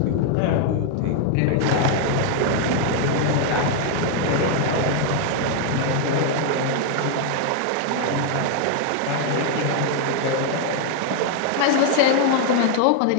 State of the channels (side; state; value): both; different; correlation 0.00